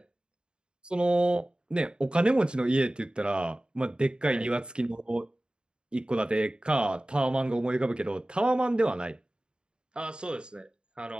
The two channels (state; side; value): late; left; 0.050 ms